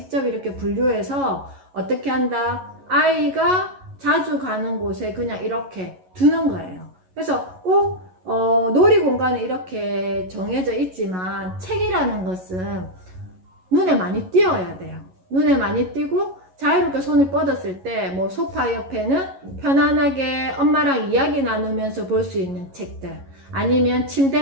이렇게 분류해서 어떻게 한다? 아이가 자주 가는 곳에 그냥 이렇게 두는 거예요. 그래서 꼭 놀이공간에 이렇게 정해져 있지만 책이라는 것은 눈에 많이 띄어야 돼요. 눈에 많이 띄고 자유롭게 손을 뻗었을 때 뭐 소파 옆에는 편안하게 엄마랑 이야기 나누면서 볼 수 있는 책들, 아니면 침대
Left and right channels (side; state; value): left; late; 11 ms